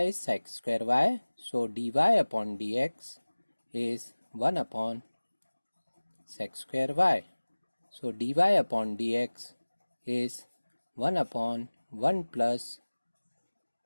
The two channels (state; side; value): inverted; both; correlation -1.00